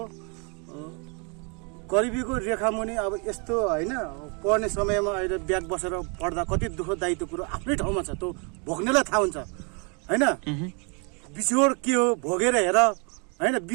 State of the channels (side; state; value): left; quieter; 34.7 dB